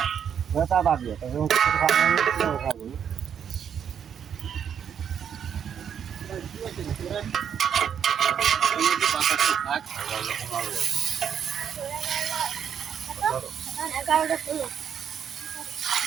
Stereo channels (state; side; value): quieter; left; 8.2 dB